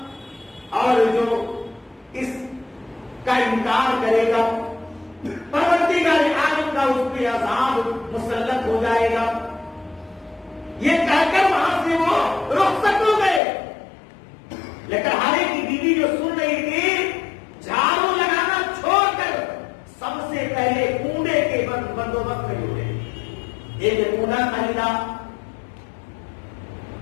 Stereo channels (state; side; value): drops out; right; at 13.4 s